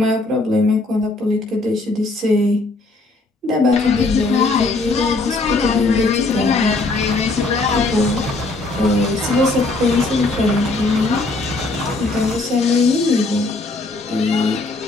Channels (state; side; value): quieter; right; 3.3 dB